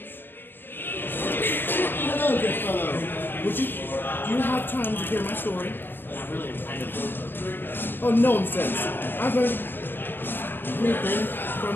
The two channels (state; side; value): late; right; 0.098 ms